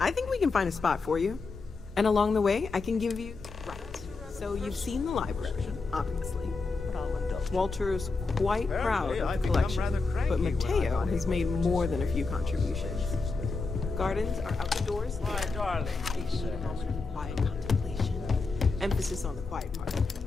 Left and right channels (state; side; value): quieter; right; 4.0 dB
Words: think we can find a spot for you. And along the way, I can give you... Right. So you've seen the library, obviously. Walter is quite proud of the collection, but Mateo has made more than a few contributions. Gardens are outdoors. My darling. They need a moment of quiet contemplation. Emphasis on the quiet part,